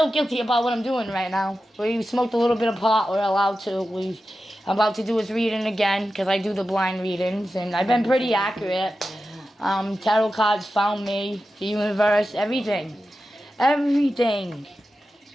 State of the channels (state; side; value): normal; both; correlation 0.92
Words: guilty about what I'm doing right now. We smoked a little bit of pot. We're allowed to. I'm about to do his reading again because I do the blind readings. And I've been pretty accurate. Tarot cards found me, the universe, everything. Everything.